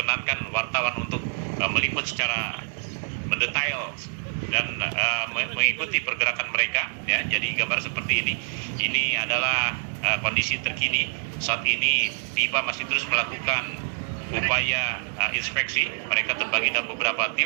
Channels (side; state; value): left; silent; 61 dB below the other